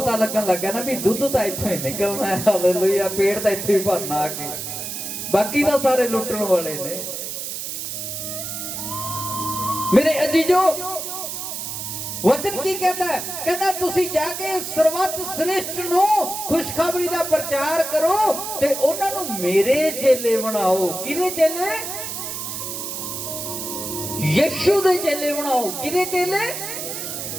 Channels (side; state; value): right; noise; hiss, 6 dB below the sound